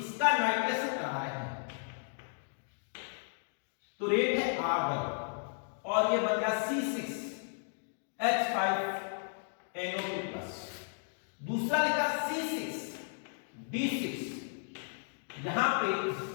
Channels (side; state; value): right; silent; digital silence